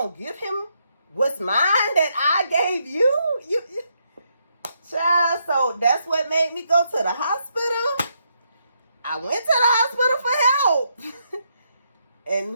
give him what's mine that I gave you? You child, so that's what made me go to the hospital. I went to the hospital for help.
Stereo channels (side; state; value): both; inverted; correlation -0.77